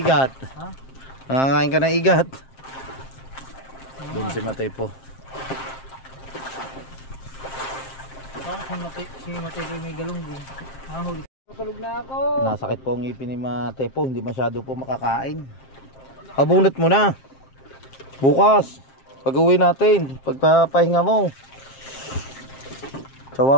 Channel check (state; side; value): late; right; 7.6 ms